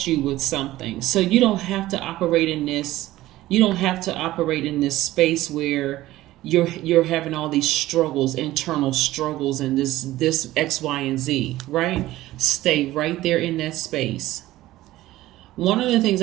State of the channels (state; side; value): quieter; left; 16.1 dB